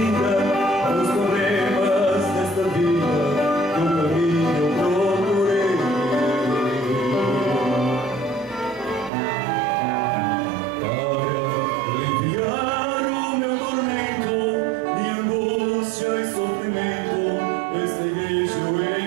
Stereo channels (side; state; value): left; drops out; at 9.1 s